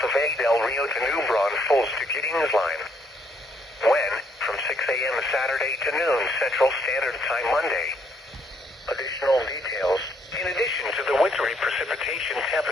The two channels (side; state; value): both; normal; correlation 0.70